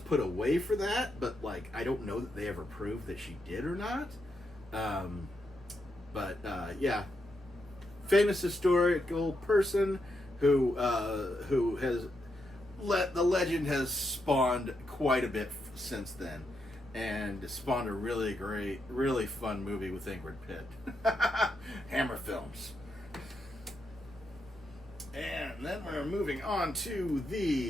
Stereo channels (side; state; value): both; normal; correlation 0.82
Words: away for that, but I don't know that they ever proved that she did or not. Yeah, famous historical person who has the legend has spawned quite a bit since then, and spawned a really great, really fun movie with Ingrid Pitt. Hammer Films. And then we're moving on to